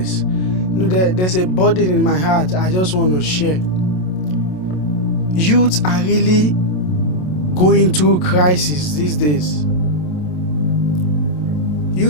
There's a burden in my heart I just want to share. Youths are really going through crisis these days.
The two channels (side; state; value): right; late; 27 ms